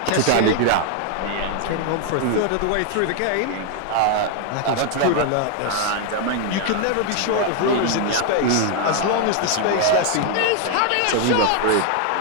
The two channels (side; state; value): both; different; correlation 0.00